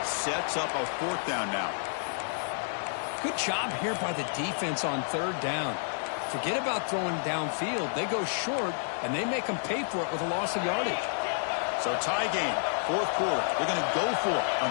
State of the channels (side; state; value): right; silent; digital silence